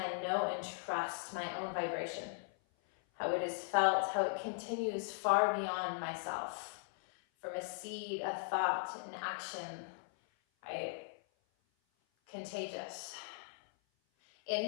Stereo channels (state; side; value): silent; right; 52 dB below the other